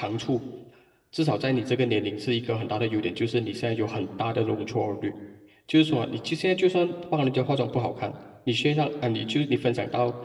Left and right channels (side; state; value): both; identical; correlation 1.00